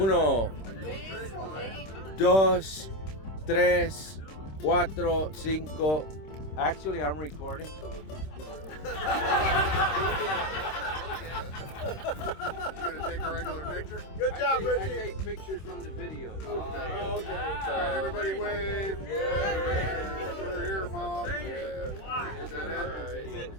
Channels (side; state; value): right; late; 26 ms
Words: dos, tres, cuatro, cinco. Actually, I'm recording, so. You gonna take a regular picture? Good job, I Richie. take pictures from the video. Okay. Oh, okay. All right, everybody wave. We're here, Mom. Yeah. Is that it?